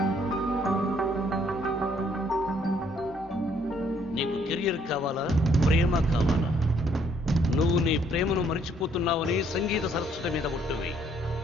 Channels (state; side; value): normal; both; correlation 0.66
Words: నీకు కెరియర్ కావాలా, ప్రేమ కావాలా? నువ్వు నీ ప్రేమను మర్చిపోతున్నావని సంగీత సరస్వతి మీద ఒట్టువి.